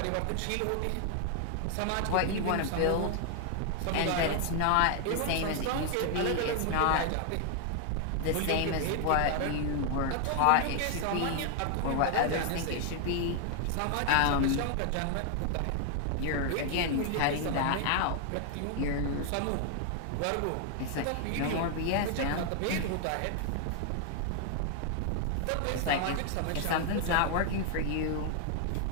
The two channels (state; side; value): different; both; correlation 0.00